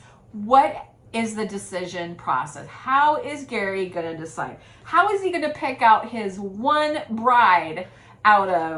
what is the decision process? How is Gerry going to decide? How is he going to pick out his one bride out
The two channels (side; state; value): both; identical; correlation 1.00